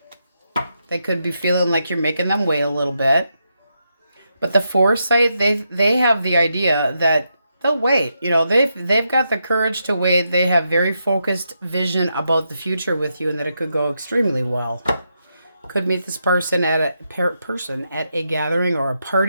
They could be feeling like you're making them wait a little bit. But the foresight, they have the idea that they'll wait. You know, they've got the courage to wait. They have very focused vision about the future with you and that it could go extremely well. Could meet this person at a gathering or a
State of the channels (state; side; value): inverted; both; correlation -0.83